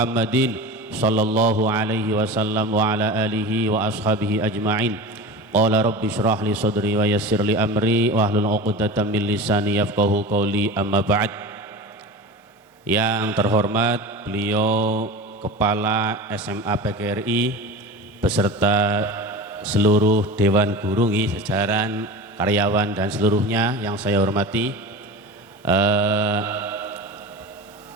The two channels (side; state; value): both; normal; correlation 0.31